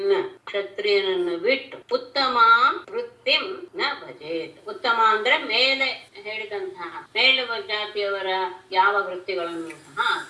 ಕ್ಷತ್ರಿಯನನ್ನು ಬಿಟ್ಟು ಉತ್ತಮ ವೃತ್ತಿಂ ನ ಭಜೇತ್. ಉತ್ತಮ ಅಂದ್ರೆ ಮೇಲೆ ಹೇಳಿದಂತಹ ಮೇಲುವ ಜಾತಿಯವರ ಯಾವ ವೃತ್ತಿಗಳನ್ನು ಸಹ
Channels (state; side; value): identical; both; correlation 1.00